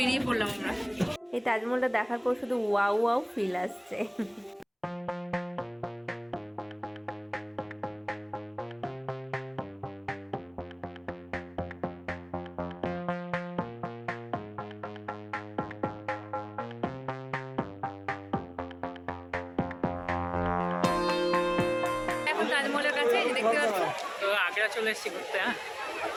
পড়লাম আমরা। এই তাজমহলটা দেখার পর শুধু ওয়াও ওয়াও ফিল আসছে। এখন তাজমহলের কাছে এই যে দেখতে পাচ্ছ, তো আগ্রা চলে এসেছি ঘুরতে। হ্যাঁ,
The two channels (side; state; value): both; identical; correlation 1.00